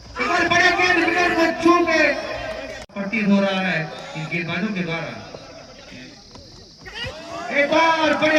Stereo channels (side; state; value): both; identical; correlation 1.00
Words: बढ़िया गेंद विकेट को छू के प्रतीत हो रहा है इन गेंदबाजों के द्वारा। एक और